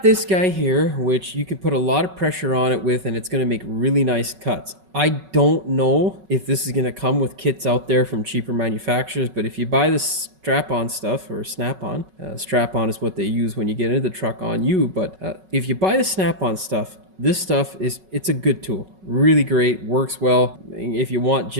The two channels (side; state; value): left; late; 5.3 ms